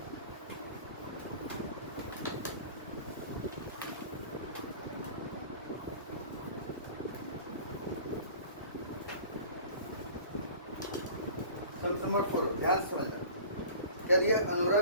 सब्जेक्ट नंबर 4 ध्यान से समझना। क्या दिया? अनोरा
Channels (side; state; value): both; inverted; correlation -0.43